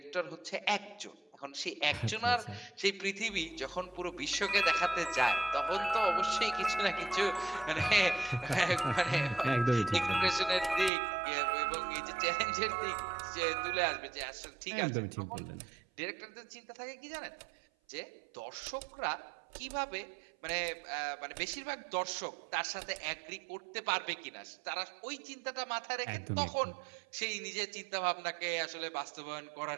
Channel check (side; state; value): left; drops out; at 10.9 s